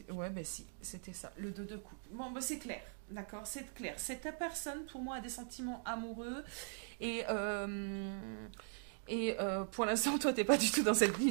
Ouais, ben si, c'était ça, le 2 de coupe. Bon, ben c'est clair, d'accord, c'est clair. Cette personne, pour moi, a des sentiments amoureux. Et, pour l'instant, toi, t'es pas du tout dans cette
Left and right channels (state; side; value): silent; left; digital silence